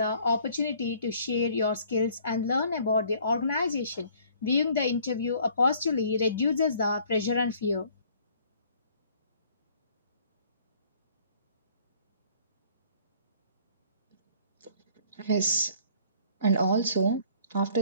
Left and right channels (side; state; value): both; inverted; correlation -0.57